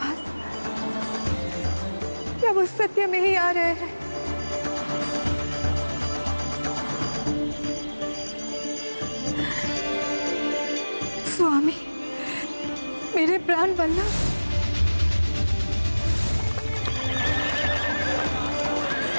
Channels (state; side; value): inverted; both; correlation -1.00